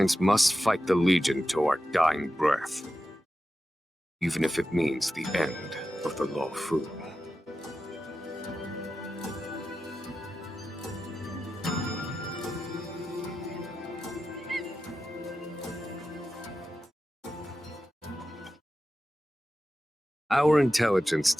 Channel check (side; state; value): both; normal; correlation 0.92